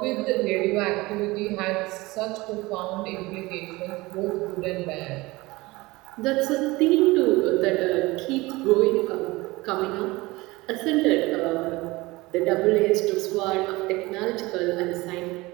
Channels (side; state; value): left; quieter; 21.4 dB